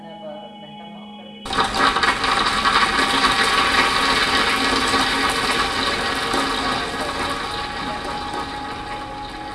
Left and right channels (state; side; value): identical; both; correlation 1.00